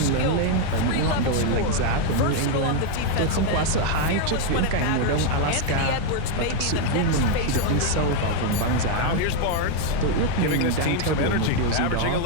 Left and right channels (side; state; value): both; different; correlation 0.00